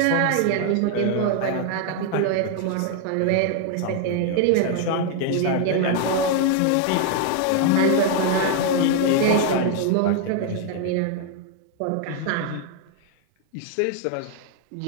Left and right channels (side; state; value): both; different; correlation 0.00